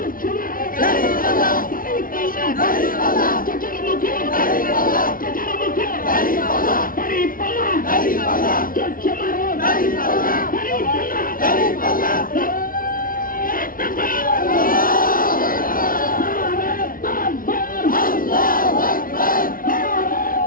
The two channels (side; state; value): right; late; 0.41 ms